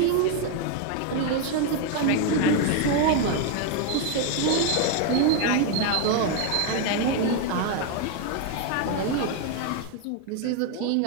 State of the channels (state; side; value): different; both; correlation 0.01